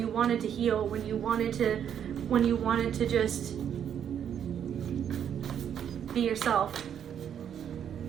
wanted to heal, when you wanted to just be yourself.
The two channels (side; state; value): left; quieter; 8.9 dB